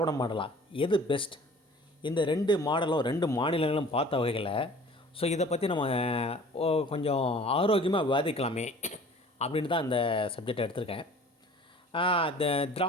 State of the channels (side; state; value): both; normal; correlation 0.47